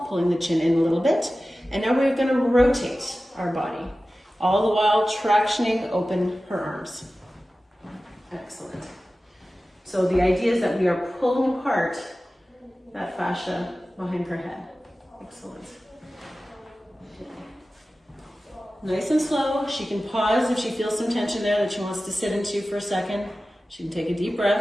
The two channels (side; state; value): both; normal; correlation 0.95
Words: pulling the chin in a little bit, and now we're gonna rotate our body, all the while tractioning open her arms. Excellent. So the idea is that we are pulling apart that fascia behind her head. Excellent. Nice and slow. She can pause if she feels some tension there that she wants to sit into for a second. She can take a deep